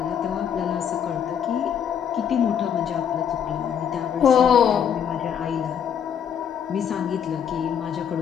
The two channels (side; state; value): right; quieter; 8.3 dB